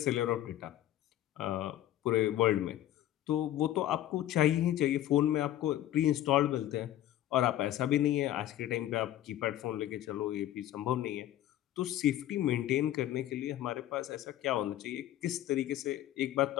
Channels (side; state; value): right; quieter; 13.1 dB